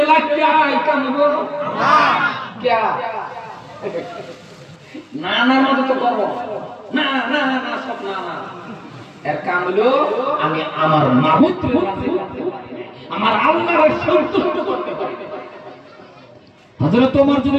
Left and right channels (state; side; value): identical; both; correlation 1.00